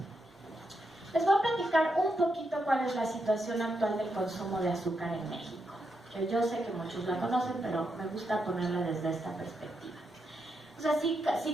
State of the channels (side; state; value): both; normal; correlation 0.83